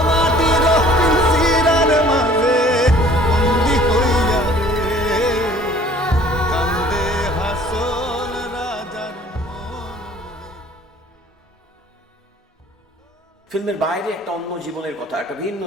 ফিল্মের বাইরে একটা অন্য জীবনের কথা, একটা ভিন্ন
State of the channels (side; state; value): both; normal; correlation 0.53